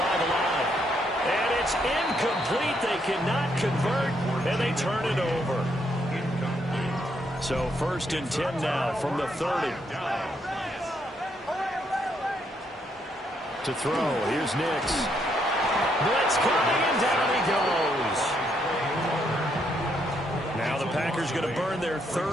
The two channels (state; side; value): normal; both; correlation 0.75